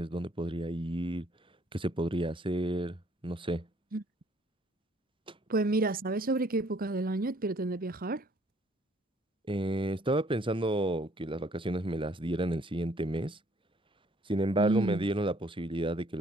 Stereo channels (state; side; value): normal; both; correlation 0.62